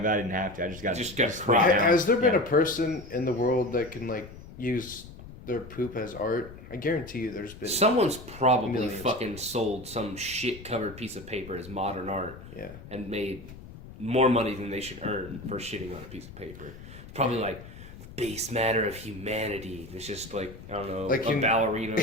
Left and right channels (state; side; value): noise; left; rumble, 16 dB below the sound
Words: I didn't have to. I just got cried out. Has there been Yeah. a person in the world that can like use their poop as art? I guarantee you, there's been. Someone's probably Millions. fucking sold some shit covered piece of paper as modern art Yeah. and made more money than they should earn for shitting on a piece of paper. It's probably like base matter of humanity. It's just like I don't know, Like a ballerina